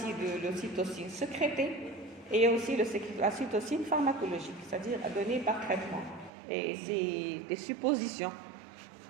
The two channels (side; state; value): left; drops out; at 6.3 s